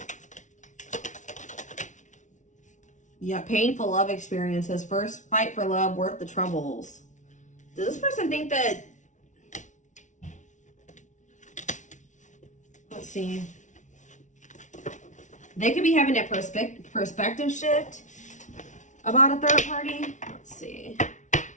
Yeah, painful love experiences. First fight for love, worth the troubles. Does this person think that... Let's see. They could be having a perspective shift about a third party. Let's see.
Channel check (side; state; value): right; late; 0.36 ms